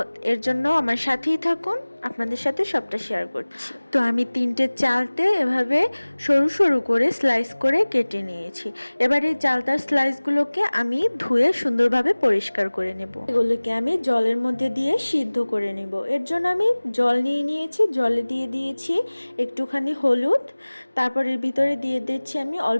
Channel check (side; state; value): both; inverted; correlation -1.00